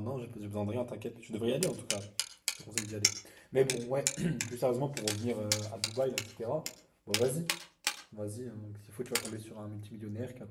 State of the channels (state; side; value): identical; both; correlation 1.00